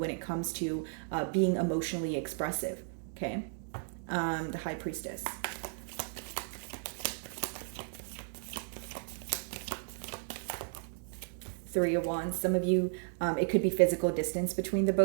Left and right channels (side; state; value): left; silent; digital silence